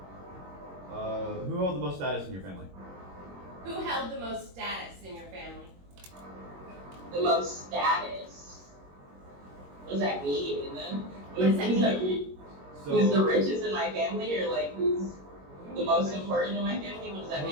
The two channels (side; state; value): left; late; 21 ms